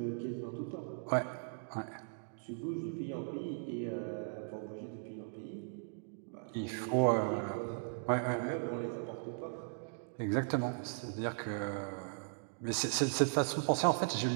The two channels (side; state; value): left; silent; digital silence